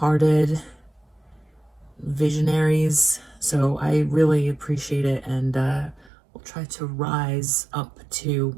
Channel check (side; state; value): left; drops out; at 6.1 s